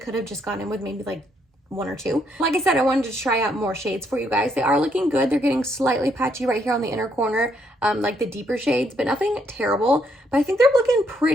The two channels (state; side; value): normal; both; correlation 0.73